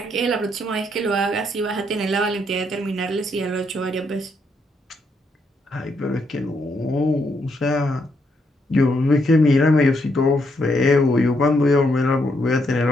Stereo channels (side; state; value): both; normal; correlation 0.76